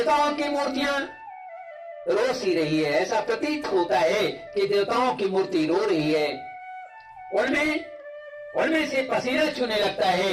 की मूर्तियां रो सी रही है। ऐसा प्रतीत होता है कि देवताओं की मूर्ति रो रही है। उनमें से पसीना छूने लगता है।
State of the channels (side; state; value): both; identical; correlation 1.00